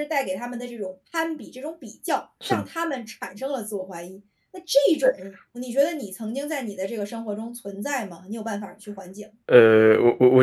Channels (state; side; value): identical; both; correlation 1.00